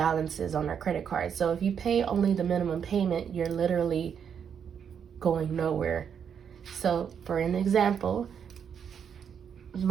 on our credit card. So if you pay only the minimum payment, you're literally going nowhere. So for an example,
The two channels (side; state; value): left; quieter; 7.6 dB